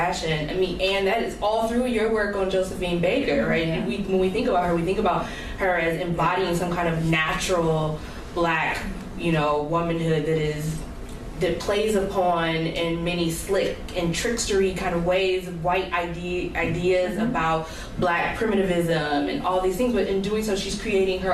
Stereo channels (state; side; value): identical; both; correlation 1.00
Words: and that is all through your work on Josephine Baker, right? Yeah. When we think about her, we think about her as embodying some kind of natural Black, womanhood that plays upon in many slick and trickstery kind of ways white ideas about Black primitivism and all these things, but in doing so she's creating her